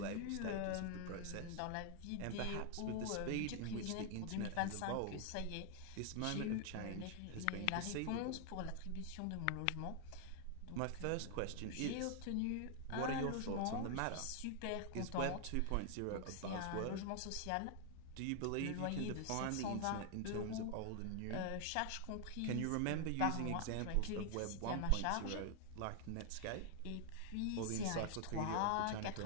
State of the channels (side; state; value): both; different; correlation 0.00